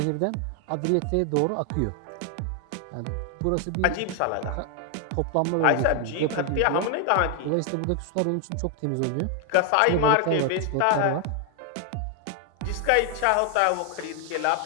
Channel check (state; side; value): different; both; correlation 0.00